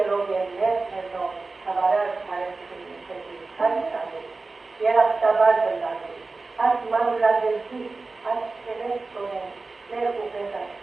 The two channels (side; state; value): left; quieter; 3.7 dB